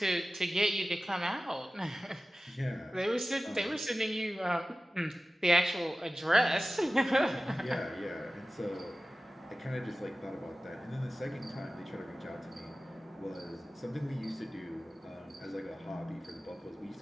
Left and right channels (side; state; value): both; normal; correlation 0.96